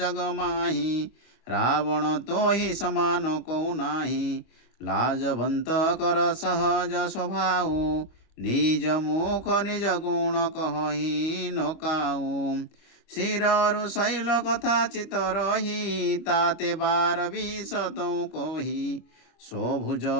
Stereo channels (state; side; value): late; right; 25 ms